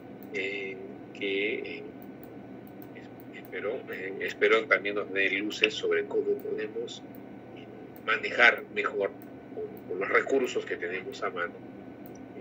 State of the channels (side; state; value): both; identical; correlation 1.00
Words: que espero también nos dé luces sobre cómo podemos manejar mejor con los recursos que tenemos a mano,